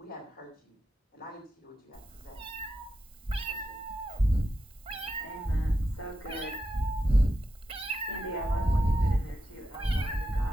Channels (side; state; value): both; normal; correlation 0.87